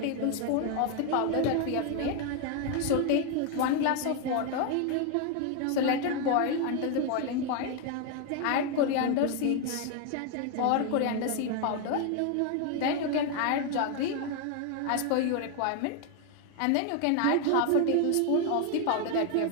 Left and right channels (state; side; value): different; both; correlation 0.01